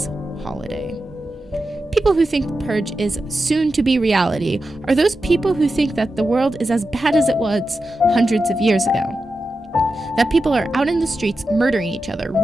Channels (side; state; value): both; normal; correlation 0.90